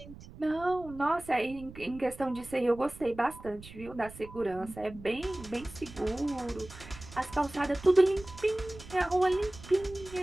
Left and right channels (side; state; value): right; noise; rumble, 17 dB below the sound